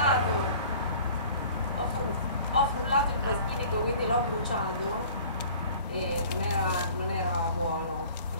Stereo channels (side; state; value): both; inverted; correlation -0.47